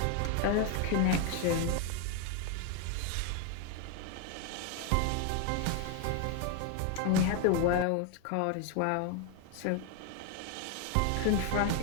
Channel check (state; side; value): different; both; correlation 0.01